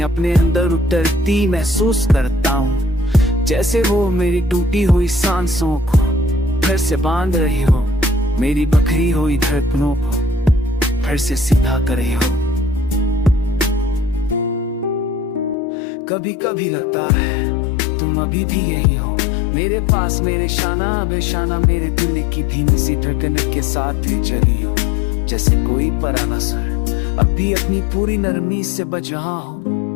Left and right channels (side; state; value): right; drops out; at 15.6 s